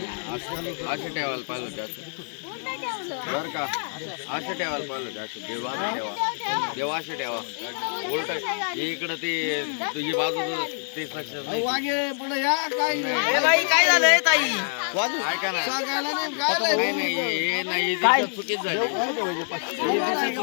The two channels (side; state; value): right; silent; digital silence